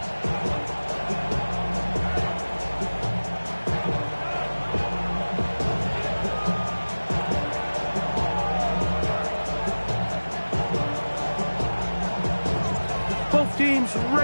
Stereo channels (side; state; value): both; inverted; correlation -1.00